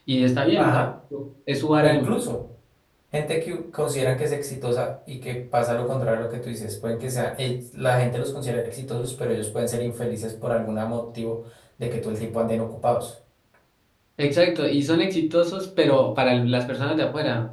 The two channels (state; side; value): identical; both; correlation 1.00